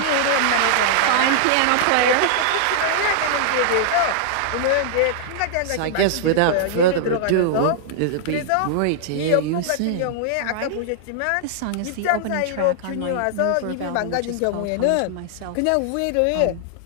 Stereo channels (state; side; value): different; both; correlation -0.01